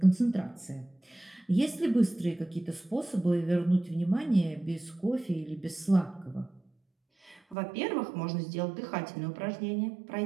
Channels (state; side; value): drops out; left; at 7.6 s